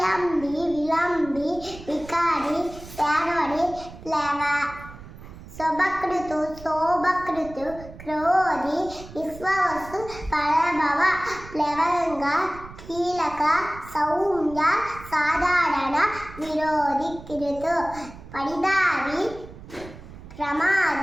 వికారి శార్వరి ప్లవ శోభకృతు క్రోధి విశ్వవస్తు పరభవ ప్లవంగ కీలక సౌమ్య సాధారణ విరోధి కిరుతు పరిదావి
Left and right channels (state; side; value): noise; right; rumble, 16 dB below the sound